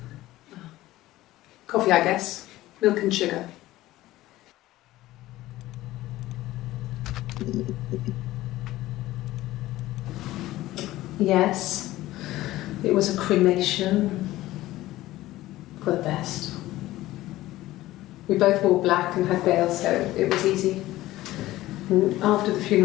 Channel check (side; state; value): right; quieter; 16.4 dB